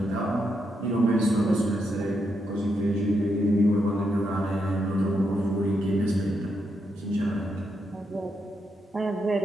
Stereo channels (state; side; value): normal; both; correlation 0.81